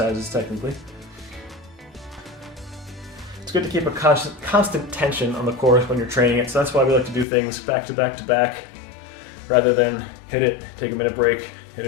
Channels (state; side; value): drops out; right; at 7.2 s